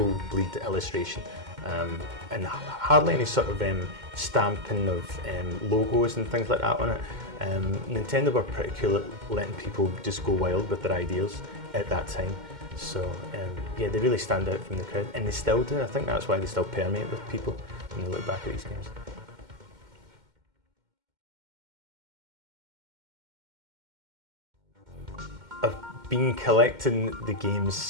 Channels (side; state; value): left; late; 2.1 ms